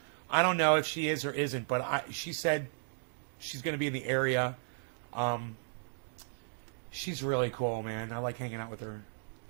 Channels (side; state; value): left; silent; digital silence